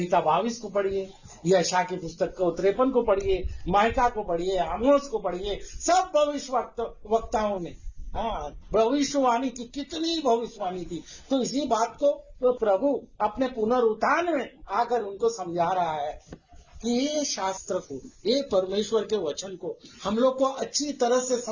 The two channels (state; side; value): identical; both; correlation 1.00